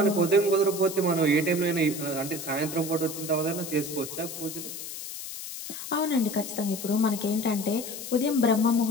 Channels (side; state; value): left; noise; hiss, 9 dB below the sound